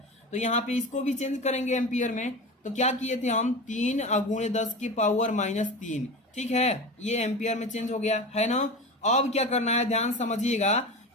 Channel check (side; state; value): both; normal; correlation 0.28